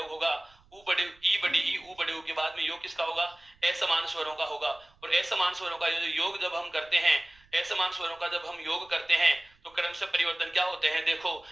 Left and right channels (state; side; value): noise; right; rumble, 30 dB below the sound